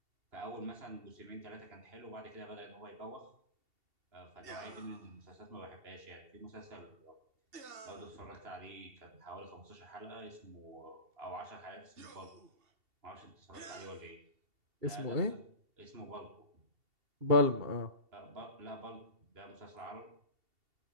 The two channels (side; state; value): left; late; 2.7 ms